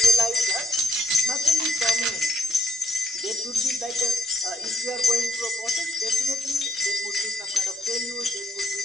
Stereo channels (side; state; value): both; normal; correlation 0.71